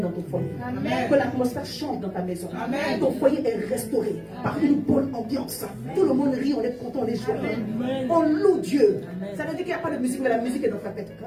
ton foyer. Amen. Que l'atmosphère change dans ta maison. Amen. Ton foyer est restauré par une bonne ambiance. Tout le monde rit, on est content, on est joyeux. On loue Dieu. Amen. Ça veut dire qu'il n'y a pas de musique, mais la musique est dans ta tête.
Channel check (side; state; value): both; identical; correlation 1.00